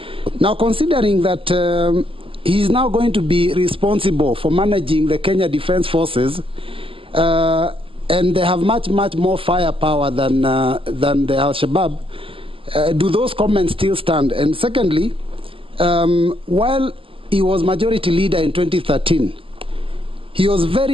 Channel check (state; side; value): late; left; 0.26 ms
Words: Now, considering that he's now going to be responsible for managing the Kenya Defense Forces, and they have much more firepower than the Al-Shabaab, do those comments still stand? And secondly, while he was majority leader in 2013, he was